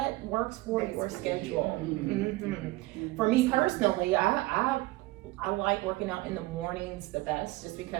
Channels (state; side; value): quieter; left; 19.9 dB